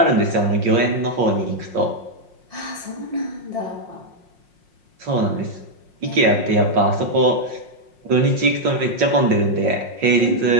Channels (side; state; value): left; late; 5.5 ms